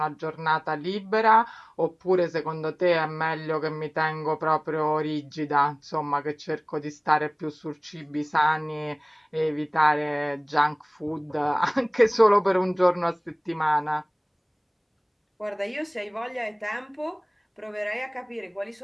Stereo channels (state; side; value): identical; both; correlation 1.00